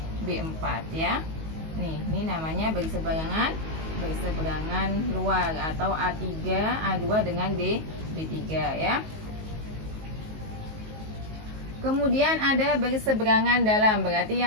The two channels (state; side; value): late; left; 19 ms